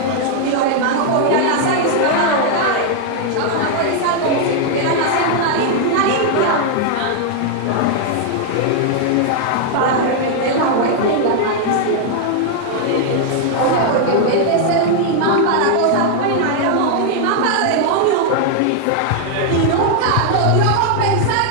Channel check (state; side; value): different; both; correlation 0.00